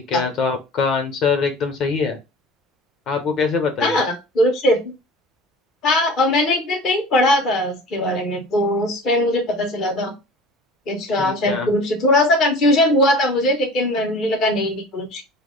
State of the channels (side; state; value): both; normal; correlation 0.40